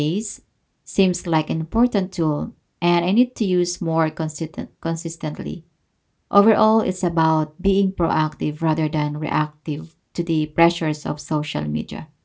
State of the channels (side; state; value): both; identical; correlation 1.00